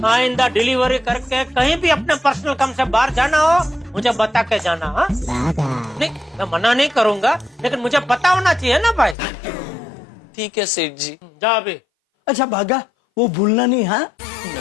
आइंदा डिलीवरी करके कहीं भी अपने पर्सनल काम से बाहर जाना हो मुझे बता के जाना। हाँ नहीं, मैं मना नहीं करूंगा, लेकिन मुझे पता होना चाहिए ना भाई। ठीक है सेठ जी। जा अभी। अच्छा भागा, वो भूलना नहीं। हाँ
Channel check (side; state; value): right; drops out; at 9.2 s